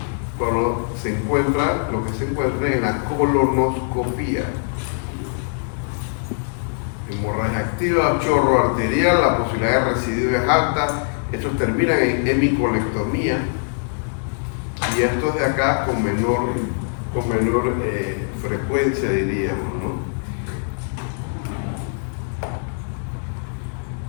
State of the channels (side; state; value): right; silent; 64 dB below the other